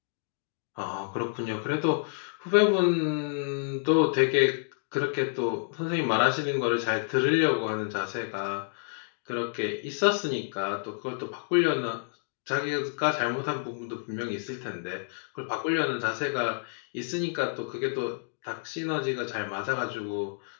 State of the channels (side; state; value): right; silent; digital silence